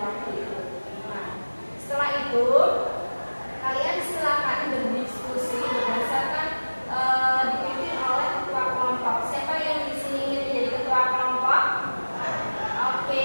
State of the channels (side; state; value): both; inverted; correlation -1.00